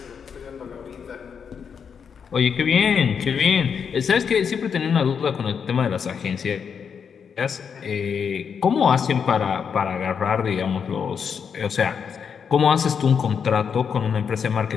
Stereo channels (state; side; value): quieter; right; 6.8 dB